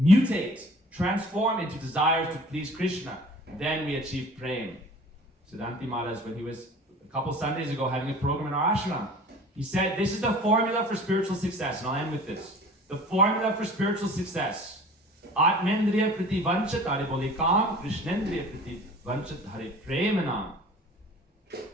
transform into desires to please Krishna. Then we achieve prem. Siddhanti Maharaj, when he was a couple Sundays ago having a program in our ashram, he said, this is the formula for spiritual success. And I'll end with this. The formula for spiritual success. Atmendriya priti vanchat hare boli kam, Krishnendriya priti vanchat hare premanam.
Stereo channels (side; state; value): both; normal; correlation 0.45